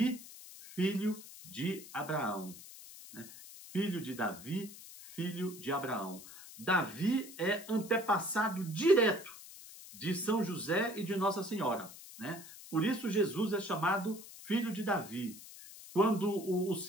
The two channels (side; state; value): left; noise; hiss, 16 dB below the sound